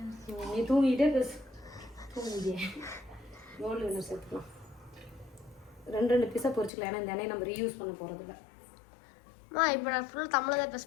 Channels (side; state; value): right; drops out; at 6.7 s